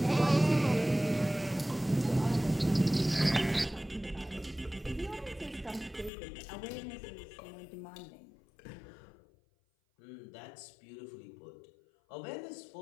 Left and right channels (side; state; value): right; drops out; at 6.1 s